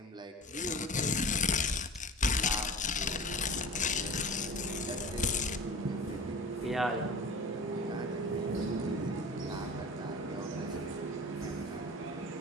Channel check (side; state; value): both; normal; correlation 0.36